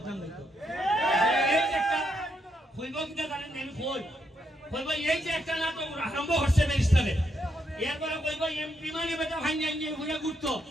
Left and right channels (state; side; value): normal; both; correlation 0.78